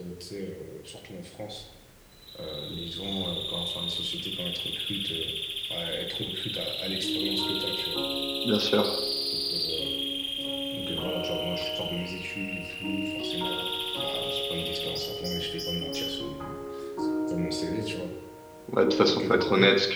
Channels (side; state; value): both; identical; correlation 1.00